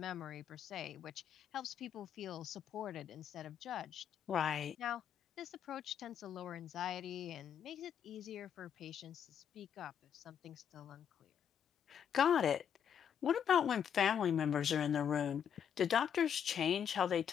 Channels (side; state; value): right; quieter; 8.4 dB